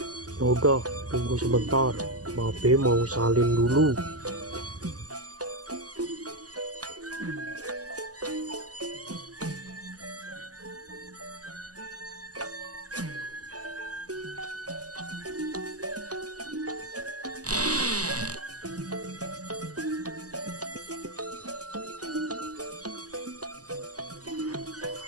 Yaudah, tunggu sebentar. Pape mau salin dulu.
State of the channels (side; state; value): left; late; 0.67 ms